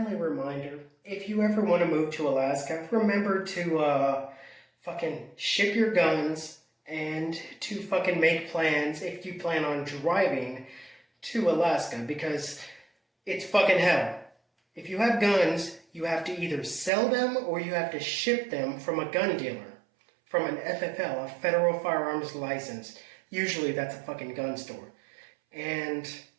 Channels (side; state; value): left; drops out; at 16.9 s